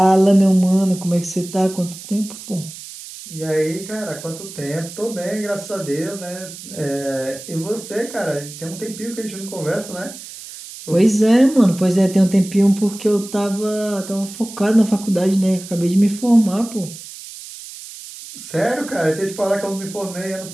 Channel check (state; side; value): noise; right; hiss, 14 dB below the sound